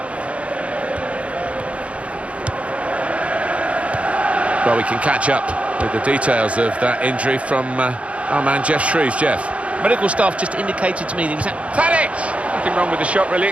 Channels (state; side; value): late; left; 0.063 ms